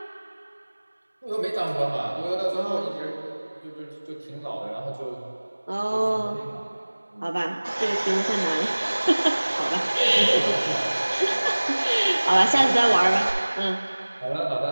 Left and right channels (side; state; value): both; inverted; correlation -1.00